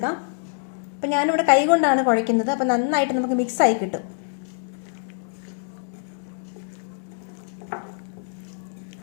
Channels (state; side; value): silent; right; digital silence